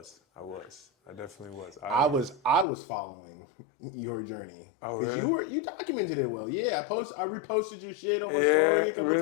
I definitely was. I was following your journey because really? you documented it well. Yeah, I reposted your shit on my story a couple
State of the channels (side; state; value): right; drops out; at 2.7 s